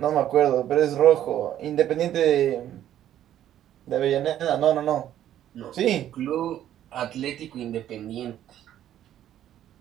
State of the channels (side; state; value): left; quieter; 11.6 dB